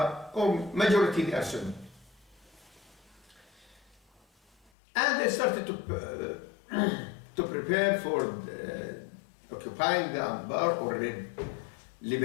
or majority they are Sunni. And they started to prepare for occupying the Anbar or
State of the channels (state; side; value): drops out; right; at 4.7 s